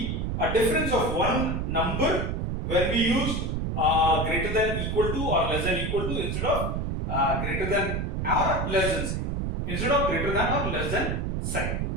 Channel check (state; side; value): noise; right; rumble, 1 dB below the sound